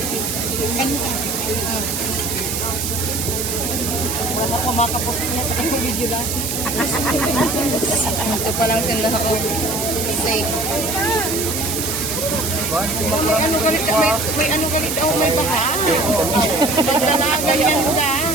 Wala ko makapost niya sa kanyang video lang. Ito pa lang sila ako. Safe. May ano galit ako, may baka. Dalagan yan da.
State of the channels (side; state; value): right; noise; hiss, 2 dB below the sound